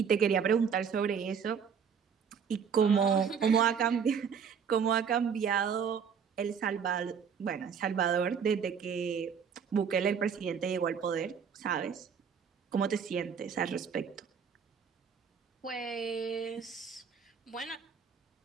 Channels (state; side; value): quieter; left; 6.9 dB